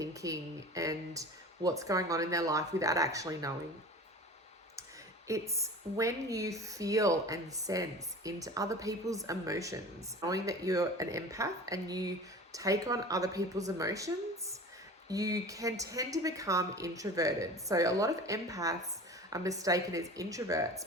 and what's going on in their life without actually knowing. It's when you feel and sense into other people's emotions, knowing that you're an empath and you take on other people's emotions, you can tend to become introverted. So a lot of empaths are mistaken as introverts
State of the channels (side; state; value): both; normal; correlation 0.37